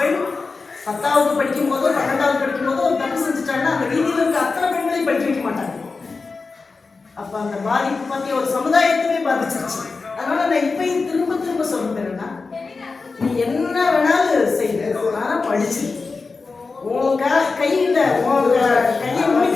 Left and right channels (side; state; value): right; quieter; 4.2 dB